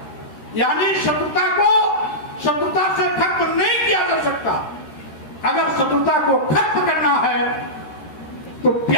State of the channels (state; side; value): late; right; 13 ms